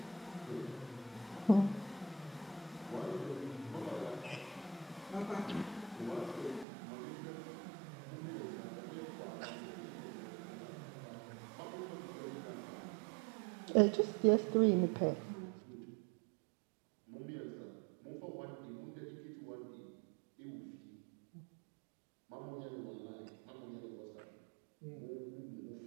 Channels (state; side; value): drops out; left; at 6.7 s